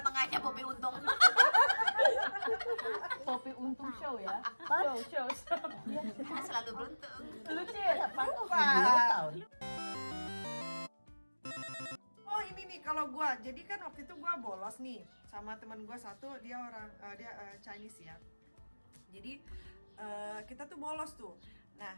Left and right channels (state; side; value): inverted; both; correlation -1.00